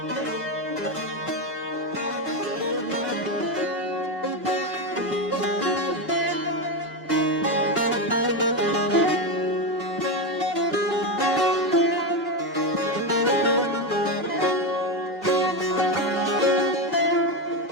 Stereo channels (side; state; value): both; normal; correlation 0.12